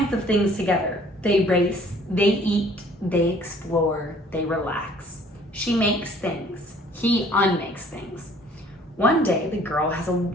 of things together. They race, they eat, they explore, they relax. She makes things. He unmakes things. One day, the girl has a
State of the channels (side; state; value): both; normal; correlation 0.56